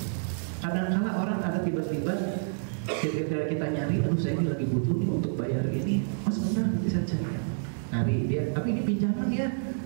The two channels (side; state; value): left; silent; digital silence